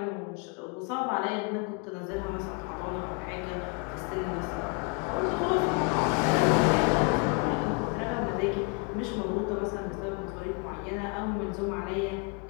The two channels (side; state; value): right; quieter; 31.2 dB